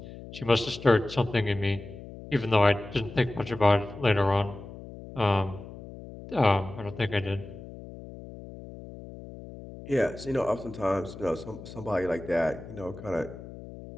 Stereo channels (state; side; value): noise; left; hum, 14 dB below the sound